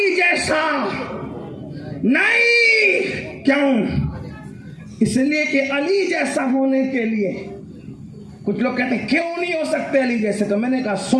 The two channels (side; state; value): both; identical; correlation 1.00